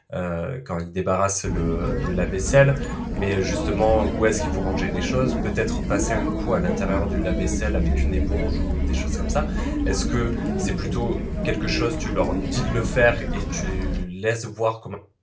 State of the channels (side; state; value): both; identical; correlation 1.00